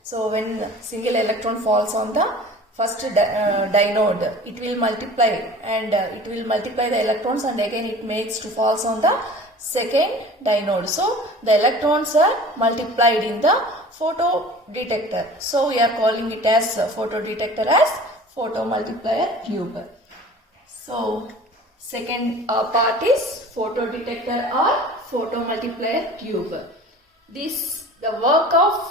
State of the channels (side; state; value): both; normal; correlation 0.42